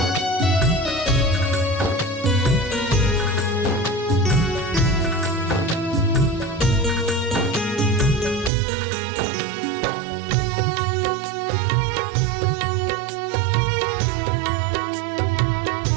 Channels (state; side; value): drops out; left; at 8.5 s